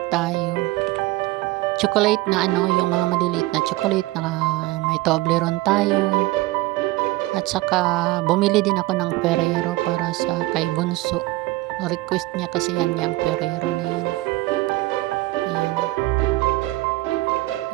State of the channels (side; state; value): left; quieter; 19.4 dB